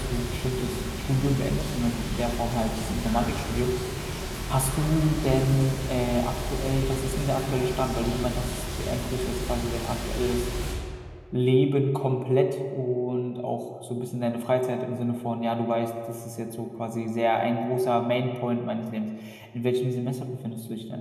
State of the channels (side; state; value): both; identical; correlation 1.00